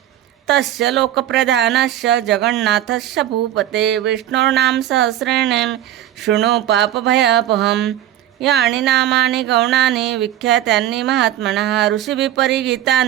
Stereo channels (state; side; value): quieter; left; 12.4 dB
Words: तस्य लोकप्रधानस्य जगन्नाथस्य भूपते विष्णोर्नाम सहस्रेण शृणु पापभयापहम्। यानि नामानि गौणानि विख्यातानि महात्मनः ऋषिभिः